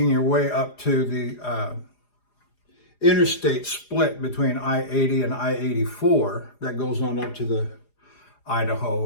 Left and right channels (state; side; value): late; right; 4.9 ms